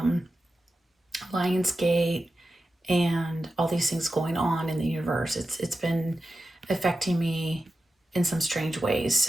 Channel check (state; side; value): normal; both; correlation 0.92